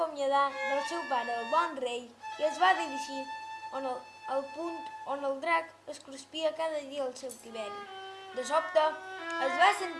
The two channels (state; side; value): identical; both; correlation 1.00